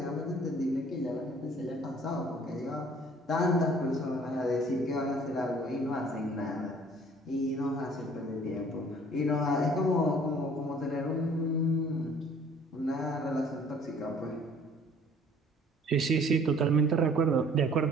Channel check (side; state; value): both; normal; correlation 0.54